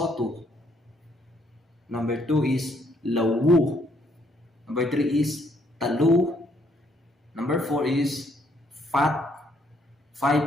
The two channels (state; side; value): normal; both; correlation 0.69